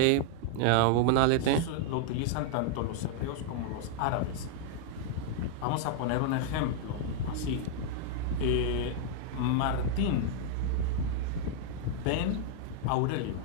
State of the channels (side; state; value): both; different; correlation -0.01